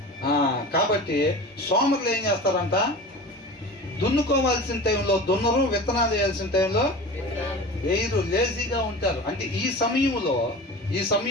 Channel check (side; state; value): both; normal; correlation 0.34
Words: కాబట్టి సోమరులు ఏం చేస్తారంట, దున్నుకోవాల్సిన టైంలో దున్నరు, విత్తనాలు వేయాల్సిన టైంలో వేయరు, లేజీగా ఉంటారు. అంటే ఈ